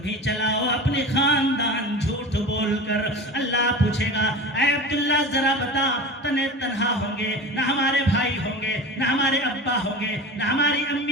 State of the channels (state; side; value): normal; both; correlation 0.32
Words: چلاؤ اپنے خاندان جھوٹ بول کر. اللہ پوچھے گا اے عبداللہ ذرا بتا, تنے تنہا ہوں گے, نہ ہمارے بھائی ہوں گے, نہ ہمارے ابا ہوں گے, نہ ہماری